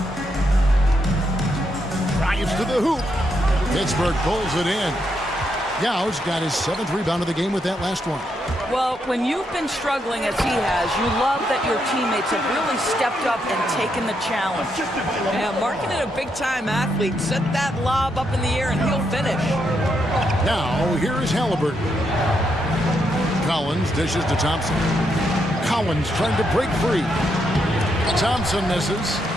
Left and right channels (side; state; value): both; normal; correlation 0.79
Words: Drives to the hoop. Pittsburgh pulls it in. Yau's got his 7th rebound of the game with that last one. Well, when you've been struggling as he has, you love that your teammates have really stepped up and taken the challenge. Yeah, Markkanen, a big-time athlete. Set that lob up in the air and he'll finish. Now, here is Halliburton. Collins dishes to Thompson. Collins trying to break free. Thompson misses.